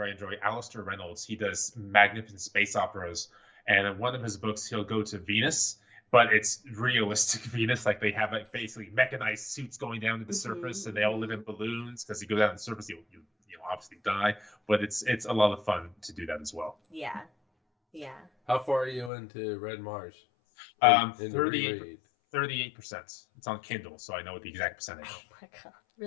I enjoy, Alistair Reynolds, he does magnificent space operas, and in one of his books he'll go to Venus, but it's realistic Venus, like they have basically mechanized suits going down to the surface, and they all live in balloons, because you go down to the surface, you obviously die, but it's a lot of fun to do that as well. Yeah. How far are you into Red Mars? 38%. It's on Kindle, so I know the exact percentage. Oh my god!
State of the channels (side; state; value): right; drops out; at 19.1 s